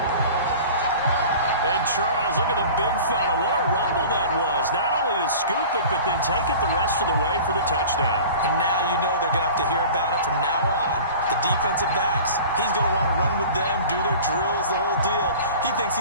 And Charles, look at the big fella. What a rumble that does, not only to scoop it, but then take it the rest of the way for the touchdown. And now you know they're going to have to hear about it from now on. The defensive backs, he's going to want to run with them, do their drills, the whole deal. He thinks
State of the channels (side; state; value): both; inverted; correlation -0.40